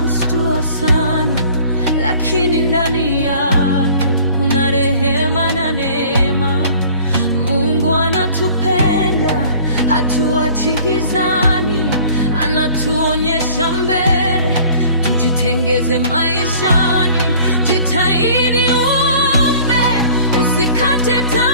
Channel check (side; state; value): both; inverted; correlation -0.50